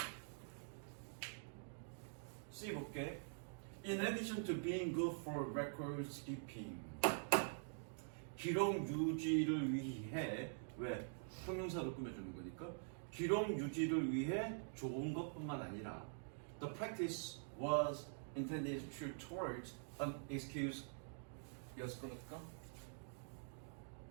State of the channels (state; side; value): silent; left; digital silence